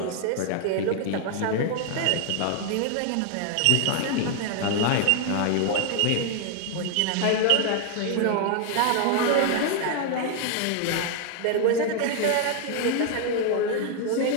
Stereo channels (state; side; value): different; both; correlation 0.00